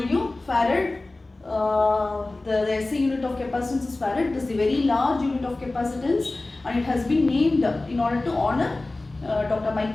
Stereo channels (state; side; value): quieter; right; 3.0 dB